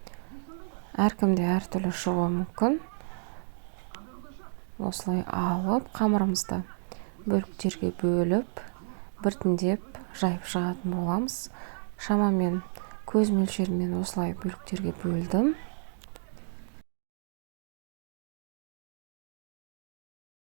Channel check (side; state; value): left; silent; digital silence